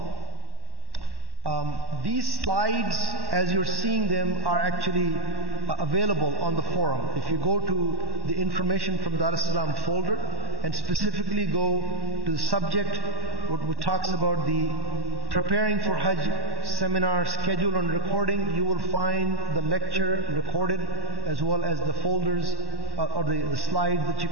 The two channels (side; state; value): left; late; 1.1 ms